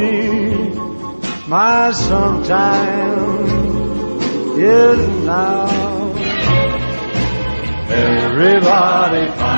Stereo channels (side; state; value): both; inverted; correlation -1.00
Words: my sometime is now. Everybody